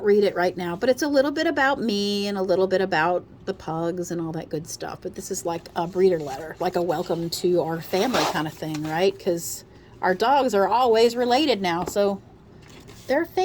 read it right now. But it's a little bit about me and a little bit about the pugs and all that good stuff. But this is like a breeder letter, like a welcome to our family kind of thing, right? Because our dogs are always related now, so they're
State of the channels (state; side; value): identical; both; correlation 1.00